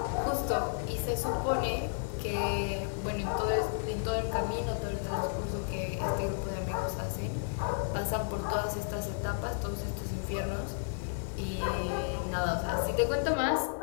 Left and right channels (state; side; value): silent; right; 56 dB below the other